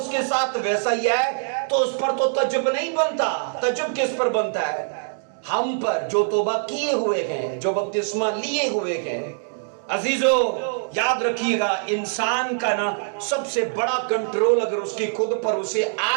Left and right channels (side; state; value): left; silent; digital silence